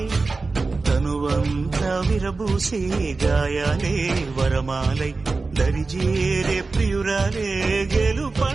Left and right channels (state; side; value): quieter; left; 3.8 dB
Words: తనువంతా విరబూసే గాయాలే వరమాలై దరిజేరే ప్రియురాలే